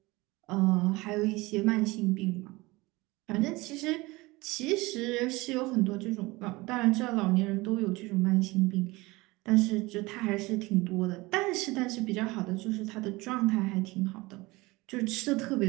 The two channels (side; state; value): left; quieter; 22.1 dB